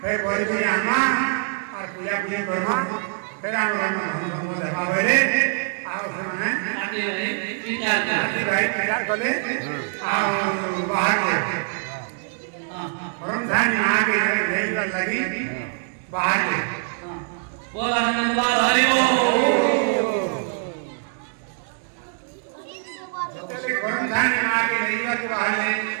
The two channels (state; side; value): silent; left; 60 dB below the other